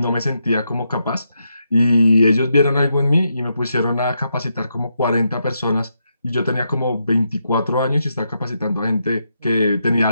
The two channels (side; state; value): both; inverted; correlation -0.82